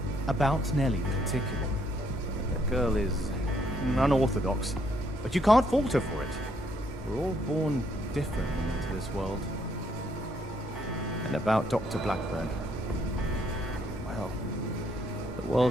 About Nellie in particular. The girl is unorthodox, but you can't fault her for it. We're all born different into this world. And about Dr. Blackburn, well, the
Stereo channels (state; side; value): normal; both; correlation 0.70